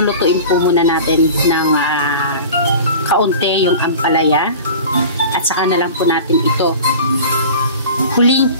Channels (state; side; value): inverted; both; correlation -0.37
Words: po muna natin ng kaunti yung ampalaya. At saka na lang po natin ito huling